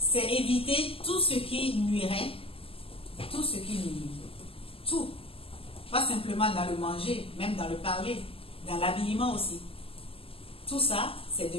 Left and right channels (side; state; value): right; late; 0.27 ms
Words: éviter tout ce qui nuirait, tout ce qui nuit. Tout. Pas simplement dans le manger, même dans le parler, dans l'habillement aussi. Tout ça, c'est